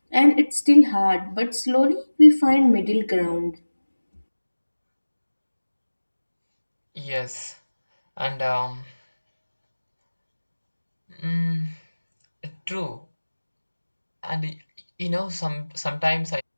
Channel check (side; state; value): both; inverted; correlation -1.00